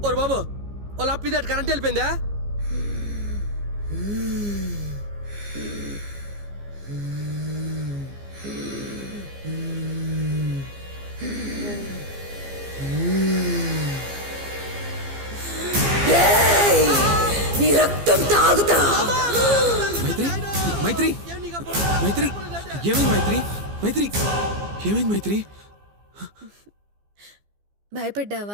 ఓరు బాబు, వాళ్ళ అప్ప ఇది కరెంట్ వెళ్ళిపోయిందా? నీ రక్తం తాగుతా. మైత్రి, మైత్రి, మైత్రి, ఏమైంది మైత్రి? మైత్రి, ఏమైంది మైత్రి?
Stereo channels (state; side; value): late; left; 15 ms